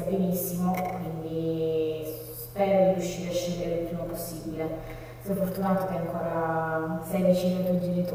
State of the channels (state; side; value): identical; both; correlation 1.00